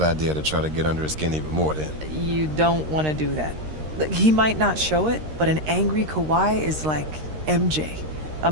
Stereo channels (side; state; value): left; late; 13 ms